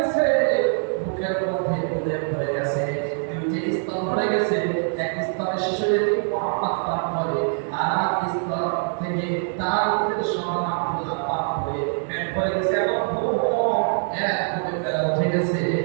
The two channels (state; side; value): silent; left; 63 dB below the other